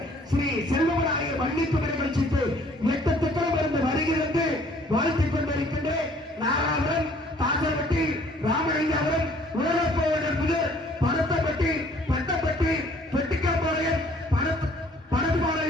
ஸ்ரீ செல்வமநாயகர் வள்ளிக்குடி நிகழ்ச்சிக்கு 8 திட்டம் இருந்து வருகிறது வாழ்த்திக் கொண்டிருக்கின்ற நாராபுரம் தாசர்பட்டி ராமலிங்காபுரம் உலகப்போவனர் முதல் பருத்தப்பட்டி பட்டப்பட்டி பெட்டிக்காப்பாளையம்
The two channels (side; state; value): both; normal; correlation 0.58